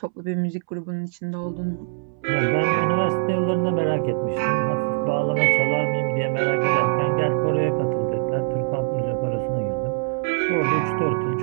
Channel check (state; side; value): silent; left; 63 dB below the other